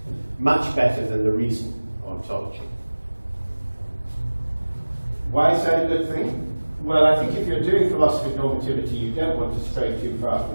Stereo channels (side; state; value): both; inverted; correlation -1.00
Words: much better than the reason ontology. Why is that a good thing? Well, I think if you're doing philosophy of normativity, you don't want to stray too far